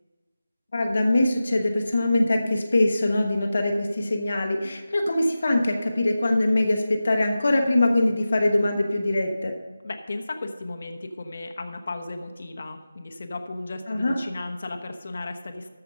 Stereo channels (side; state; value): both; inverted; correlation -0.95